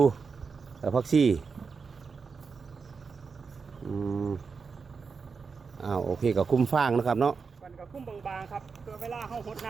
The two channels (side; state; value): left; quieter; 5.2 dB